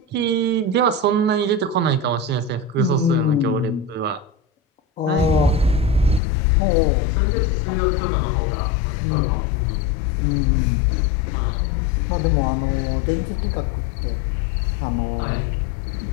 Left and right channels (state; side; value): drops out; right; at 6.2 s